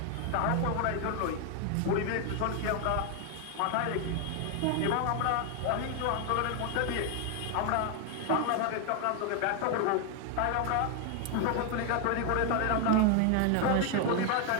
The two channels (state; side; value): different; both; correlation 0.01